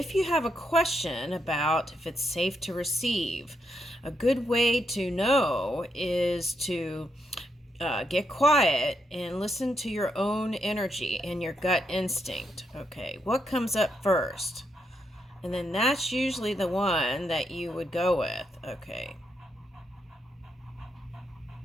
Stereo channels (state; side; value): normal; both; correlation 0.80